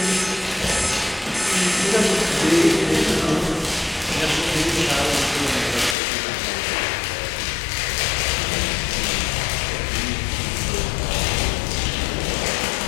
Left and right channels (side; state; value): right; drops out; at 6.0 s